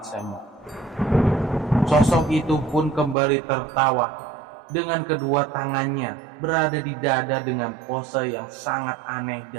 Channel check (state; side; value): drops out; left; at 3.2 s